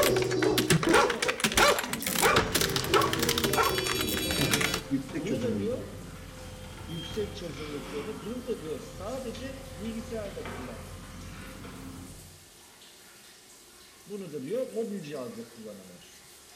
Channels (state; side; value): identical; both; correlation 1.00